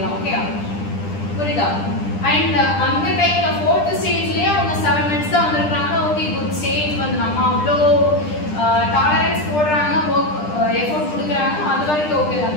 ஓகே புரியுதா அண்ட் அந்த டைம்ல 4th ஸ்டேஜ்லயே அவங்க 7 மினிட்ஸ் தான் வந்திருக்காங்க ஓகே குட் ஸ்டேஜ் வந்து நம்ம அவ்வளோ டாலரன்ஸ் போடுறாங்க எஃபோர்ட் கொடுக்குறாங்க அது வரைக்கும் ஓகே தான்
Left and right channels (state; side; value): late; right; 10 ms